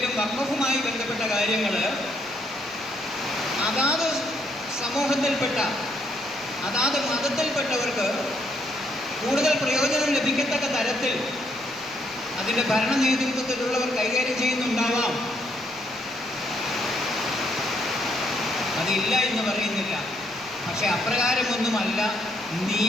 വഖഫുമായി ബന്ധപ്പെട്ട കാര്യങ്ങൾ അതാത് സമൂഹത്തിൽപ്പെട്ട, അതാത് മതത്തിൽപ്പെട്ടവർക്ക് കൂടുതൽ പ്രയോജനം ലഭിക്കത്തക്ക തരത്തിൽ അതിൻ്റെ ഭരണ നേതൃത്വത്തിലുള്ളവർ കൈകാര്യം ചെയ്യുന്നുണ്ടാവാം. അതില്ല എന്ന് പറയുന്നില്ല. പക്ഷെ അപ്രകാരമൊന്നുമല്ല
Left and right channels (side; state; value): left; noise; rumble, 30 dB below the sound